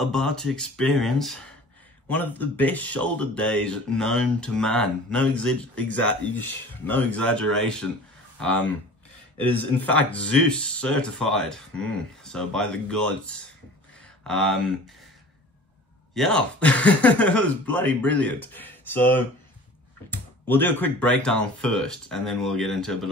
to experience one of the best shoulder days known to man. No exaggeration. It is in fact Zeus certified. So by the gods. Yeah, it was bloody brilliant. So we'll do a quick breakdown first, and then we'll get into a bit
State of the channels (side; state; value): both; normal; correlation 0.42